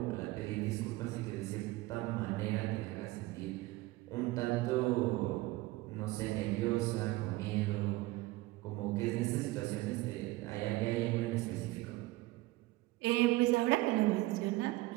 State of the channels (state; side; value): quieter; left; 19.7 dB